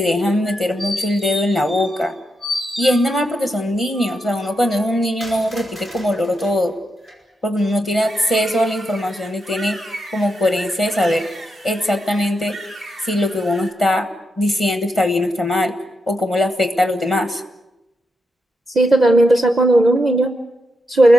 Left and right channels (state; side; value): normal; both; correlation 0.84